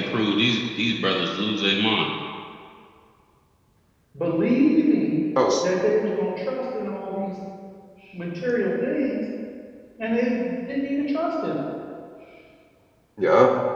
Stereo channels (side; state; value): both; identical; correlation 1.00